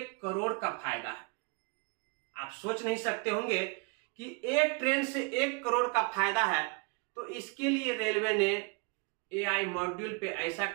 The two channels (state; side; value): quieter; left; 30.0 dB